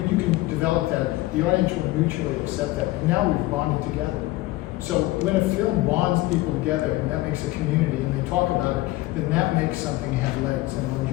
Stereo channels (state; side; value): quieter; right; 18.5 dB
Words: develop that, the audience will mutually accept that. And now we've bonded together. So when a film bonds people together and that makes a community and they talk about it, then that makes something have legs and